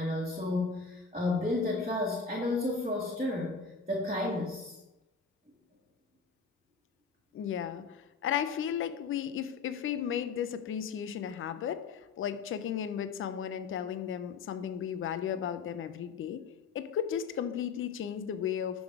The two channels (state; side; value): quieter; right; 5.0 dB